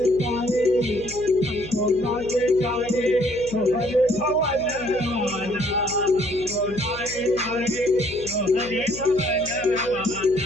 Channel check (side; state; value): left; noise; hum, 15 dB below the sound